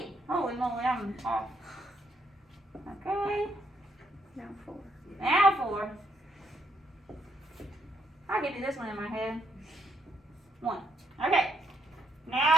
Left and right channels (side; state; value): both; normal; correlation 0.75